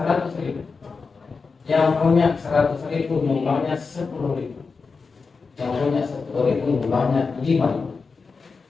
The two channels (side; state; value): right; quieter; 4.7 dB